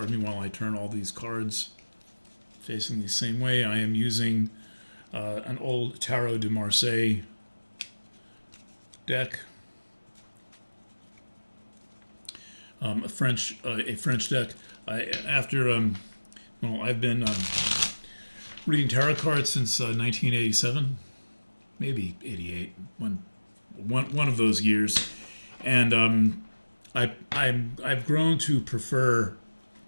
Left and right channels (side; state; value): both; inverted; correlation -1.00